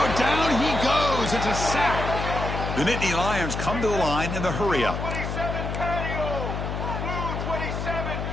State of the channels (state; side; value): noise; left; hum, 4 dB below the sound